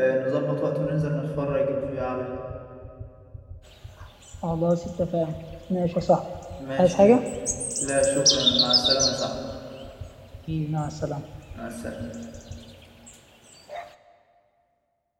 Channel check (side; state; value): both; identical; correlation 1.00